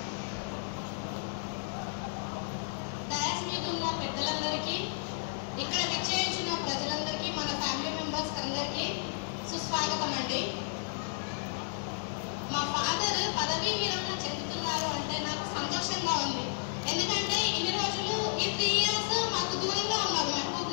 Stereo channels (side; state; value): right; silent; digital silence